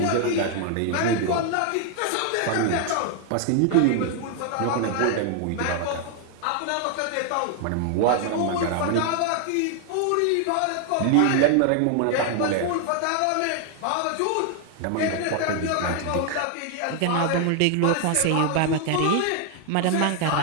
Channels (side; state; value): both; different; correlation 0.00